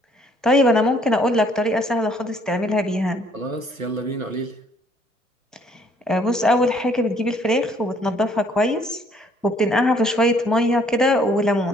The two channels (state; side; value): normal; both; correlation 0.62